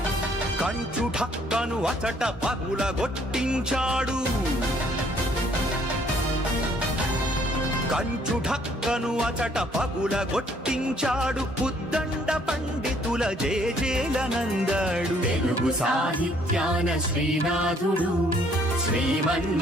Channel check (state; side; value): normal; both; correlation 0.63